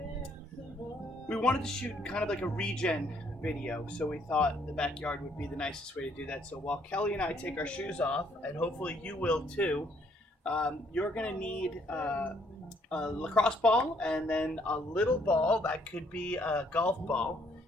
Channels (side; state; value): both; normal; correlation 0.68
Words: we wanted to shoot kind of like a regen video, so we thought the backyard would be the nicest way to do that. So while Kelly and I take our shoes off, and hopefully you will too, you're gonna need a lacrosse ball and then a little ball that could be a golf ball.